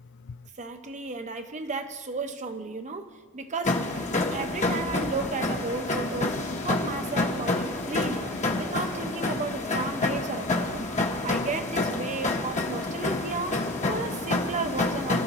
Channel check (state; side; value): normal; both; correlation 0.34